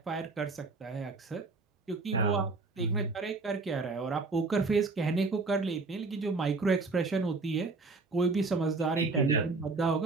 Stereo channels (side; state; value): left; quieter; 3.8 dB